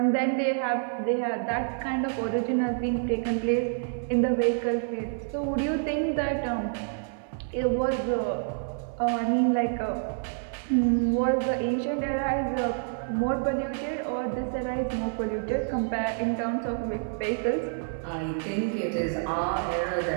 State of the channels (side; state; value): left; silent; 59 dB below the other